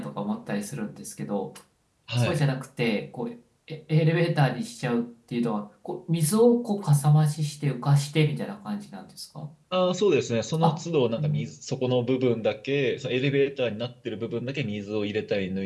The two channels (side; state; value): both; identical; correlation 1.00